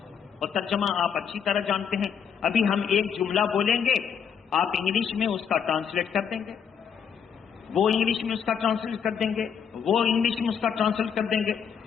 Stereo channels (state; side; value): quieter; right; 7.5 dB